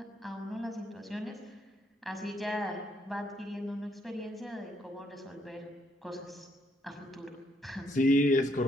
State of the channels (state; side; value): normal; both; correlation 0.72